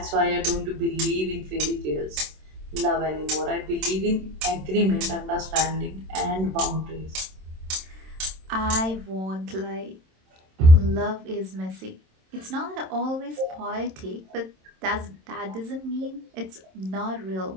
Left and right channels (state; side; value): late; left; 27 ms